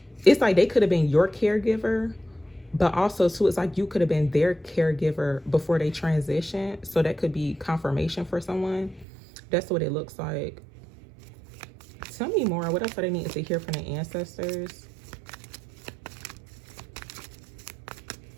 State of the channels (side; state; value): left; drops out; at 9.1 s